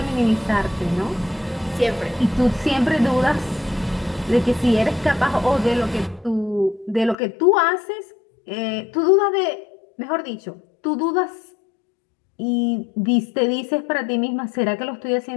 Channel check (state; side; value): drops out; right; at 7.2 s